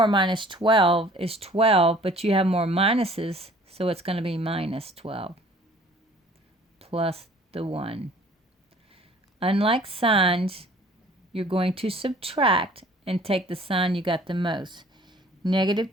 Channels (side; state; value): both; normal; correlation 0.52